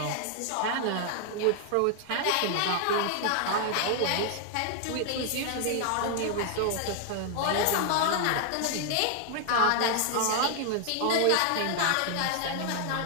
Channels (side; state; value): both; different; correlation 0.00